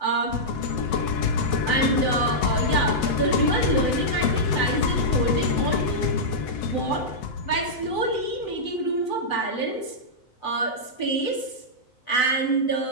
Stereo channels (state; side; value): late; right; 8.0 ms